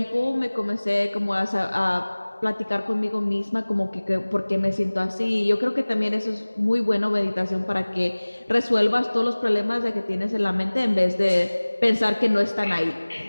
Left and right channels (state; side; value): inverted; both; correlation -1.00